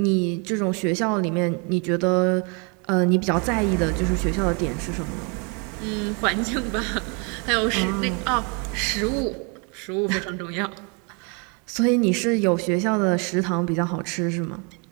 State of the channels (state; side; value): quieter; left; 34.2 dB